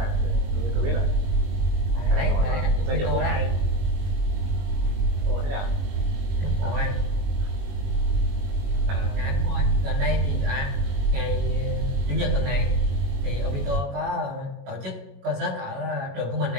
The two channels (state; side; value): late; left; 21 ms